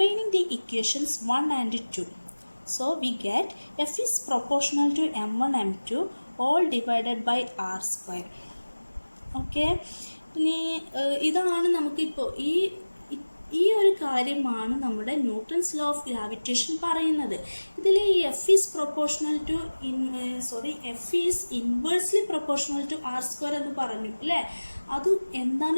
the equations 1 and 2. So we get F is proportional to M1 M2 all divided by R². ഓക്കെ, ഇനി ഇതാണ് നമുക്കിപ്പോൾ ഈ ഒരു കാര്യമാണ് നമ്മുടെ ന്യൂട്ടൺസ് ലോ ഓഫ് ഗ്രാവിറ്റേഷൻ പറയുന്നത്. ഇതിൽ ഈ F is inversely proportional to R² എന്ന് പറഞ്ഞു അല്ലേ. അത് എന്താണ്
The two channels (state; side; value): inverted; both; correlation -1.00